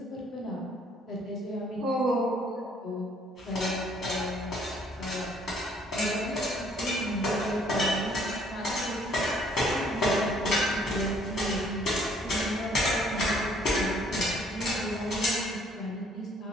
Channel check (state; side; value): normal; both; correlation 0.62